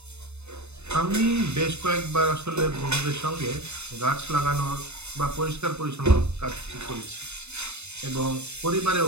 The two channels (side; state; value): left; late; 0.81 ms